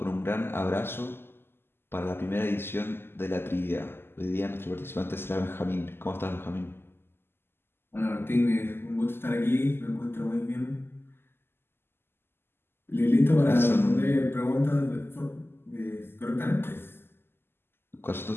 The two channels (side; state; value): right; late; 0.11 ms